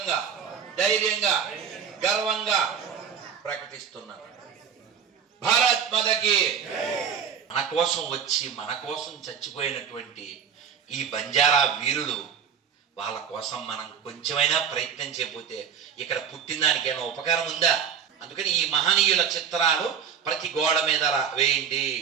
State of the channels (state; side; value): quieter; left; 7.5 dB